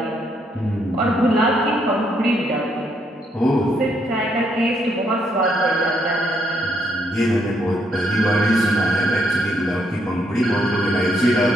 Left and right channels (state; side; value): normal; both; correlation 0.74